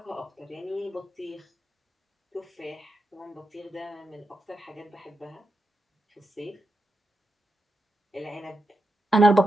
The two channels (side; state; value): both; normal; correlation 0.86